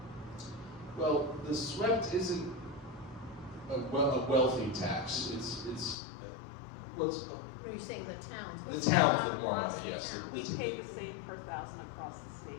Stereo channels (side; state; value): right; drops out; at 6.0 s